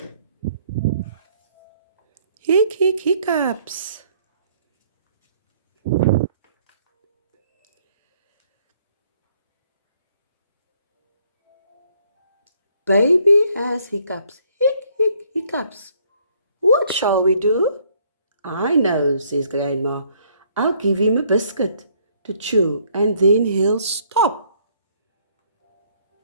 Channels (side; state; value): both; inverted; correlation -0.65